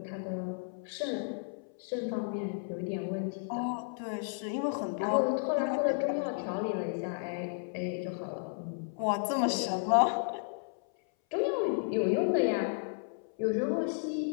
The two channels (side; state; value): right; silent; 56 dB below the other